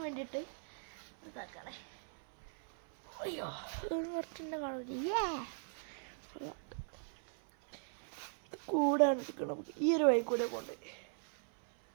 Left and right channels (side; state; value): left; silent; 52 dB below the other